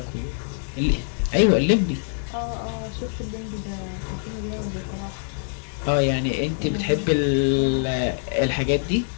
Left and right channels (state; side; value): silent; right; digital silence